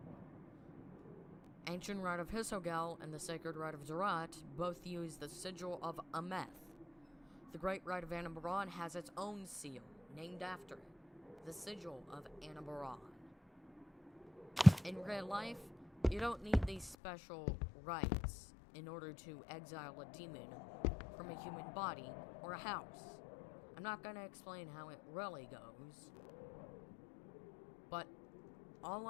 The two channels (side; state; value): right; drops out; at 16.9 s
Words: Ancient Rite of Hisogel and the Sacred Rite of Zerat both use the sigil of Ameth. The Great Rite of Anabaron has its own seal, named after it, the sigil of Anabaron. In real life, you don't need these special rites in order to exile a demon from a human body or a house. I'm not going to explain how it really goes, but all